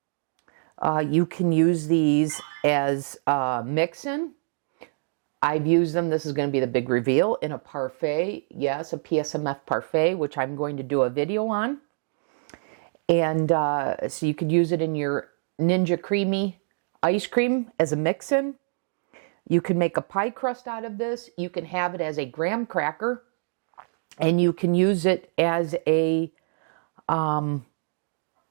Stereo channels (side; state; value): left; silent; 60 dB below the other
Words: You can use these as mix-in. I've used them, this is going to be the big reveal, in a parfait. Yes, a PSMF parfait, which I'm going to do a video on. And so you could use it in your Ninja Creami ice cream as a mix-in. You can make a pie crust out of this. You can have it as a graham cracker. And you can use it as a topping,